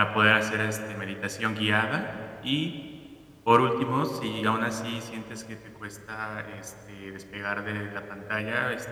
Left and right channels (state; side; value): identical; both; correlation 1.00